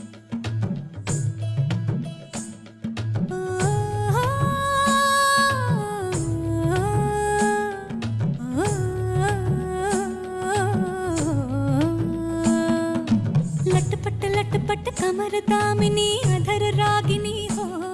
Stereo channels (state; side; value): identical; both; correlation 1.00